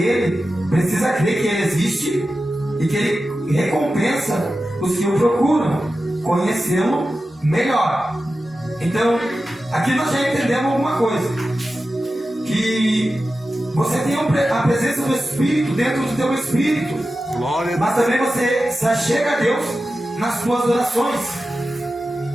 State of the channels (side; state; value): both; normal; correlation 0.93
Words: precisa crer que Ele existe e que Ele recompensa os que o procuram conhecê-lo melhor. Então, aqui nós já entendemos alguma coisa, que você tem a presença do Espírito dentro do teu Espírito, mas também você se achega a Deus nas suas orações.